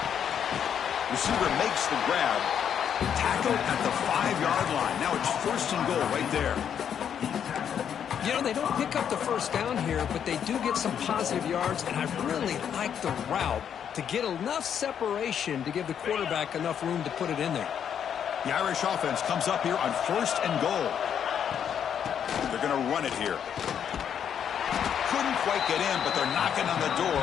Receiver makes the grab. Tackled at the 5-yard line. Now it's 1st and goal right there. You know, they don't pick up the first down here, but they do get some positive yards, and I really like the route to get enough separation to give the quarterback enough room to put it in there. The Irish offense comes up here on 1st and goal. They're going to run it here. Couldn't quite get in, but they're knocking on the door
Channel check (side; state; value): right; quieter; 8.5 dB